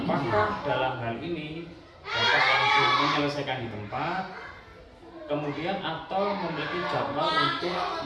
dalam hal ini Bapak langsung menyelesaikan di tempat, kemudian atau memiliki jadwal untuk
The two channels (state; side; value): identical; both; correlation 1.00